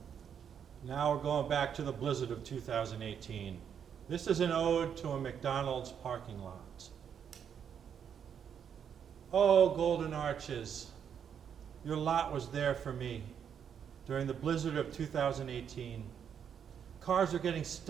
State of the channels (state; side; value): quieter; left; 8.0 dB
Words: Now we're going back to the blizzard of 2018. This is an ode to a McDonald's parking lot. Oh, Golden Arches, your lot was there for me during the blizzard of 2018. Cars are getting